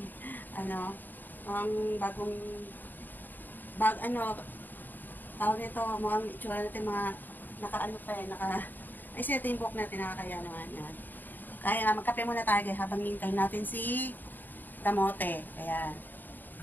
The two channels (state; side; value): late; right; 0.090 ms